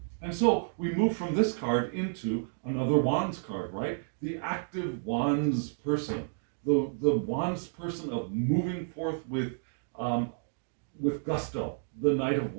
And so we move from this card into another Wands card, right? The active Wands person. The Wands person of moving forth with gusto, the Knight of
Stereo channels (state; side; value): silent; left; digital silence